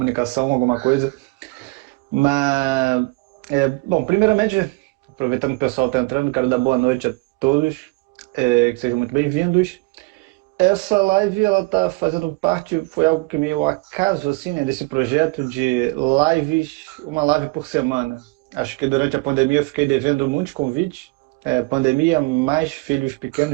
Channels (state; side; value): quieter; left; 25.6 dB